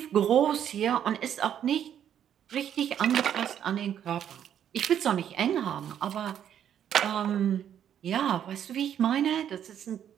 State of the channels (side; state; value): left; quieter; 9.6 dB